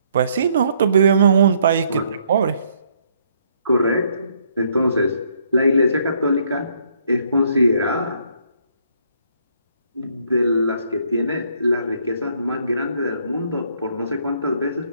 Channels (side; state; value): both; inverted; correlation -0.68